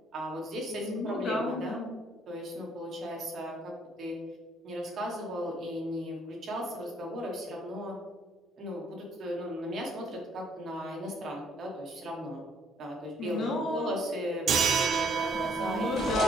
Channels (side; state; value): both; normal; correlation 0.65